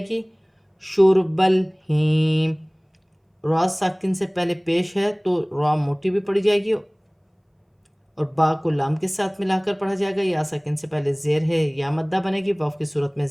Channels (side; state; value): both; identical; correlation 1.00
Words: گی، شرب الہیم، را ساکن سے پہلے پیش ہے تو را موٹی بھی پڑھی جائے گی اور با کو لام کے ساتھ ملا کر پڑھا جائے گا، یا ساکن سے پہلے زیر ہے، یا مدہ بنے گی، واف کی صورت میں